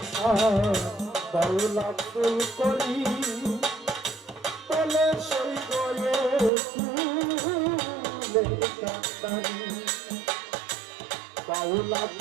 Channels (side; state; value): left; drops out; at 6.5 s